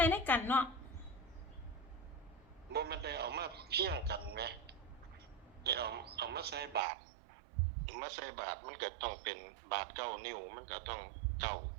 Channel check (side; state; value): left; drops out; at 6.8 s